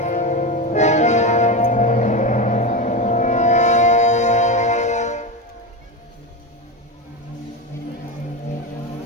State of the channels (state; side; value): normal; both; correlation 0.17